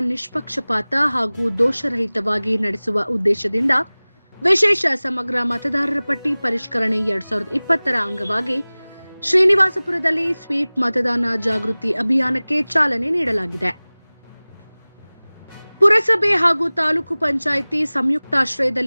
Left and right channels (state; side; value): inverted; both; correlation -1.00